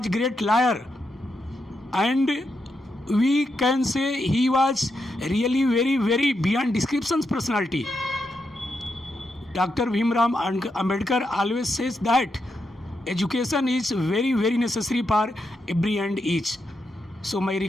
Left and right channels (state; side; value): normal; both; correlation 0.83